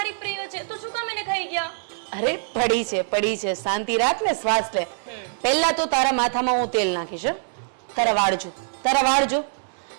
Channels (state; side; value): silent; left; 63 dB below the other